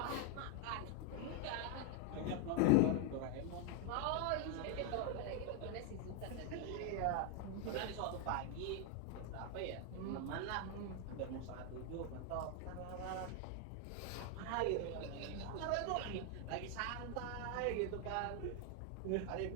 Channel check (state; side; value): different; both; correlation 0.01